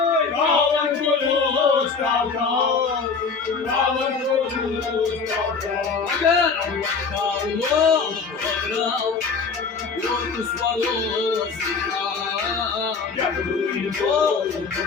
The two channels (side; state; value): right; quieter; 5.1 dB